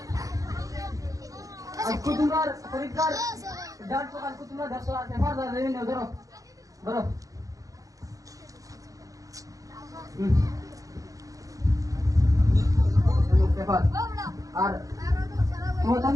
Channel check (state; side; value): late; left; 0.17 ms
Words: আজকে তোমার পরীক্ষার ডাল তো কালকে তোমরা 100 পেপার দেবে না ধরো ধরো পেপার আর তোমার